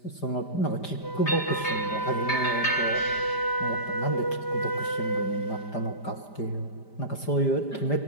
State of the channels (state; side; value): late; right; 5.0 ms